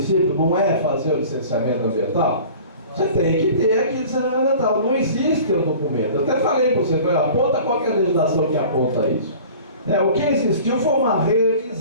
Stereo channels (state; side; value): inverted; both; correlation -0.43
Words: não é fazer o licenciamento ambiental? Você tem que ter aqui licenciamento ambiental. Não existe o documento. Eu até falei para você, aponta qualquer legislação que aponta isso. O que existiu foi uma